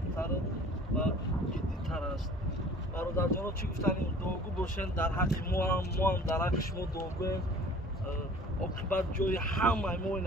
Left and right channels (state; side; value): normal; both; correlation 0.48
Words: ва ҷиддитар аст. бародарҷоно, чӣ гуфтанем, дуогӯ бошен дар ҳаққи мо ҳам дар ҳаққи шумо дуогӯем. оқибат ҷои ҳамаи мо ин